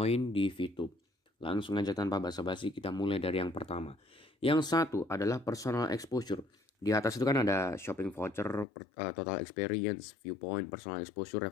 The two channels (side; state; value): right; drops out; at 8.7 s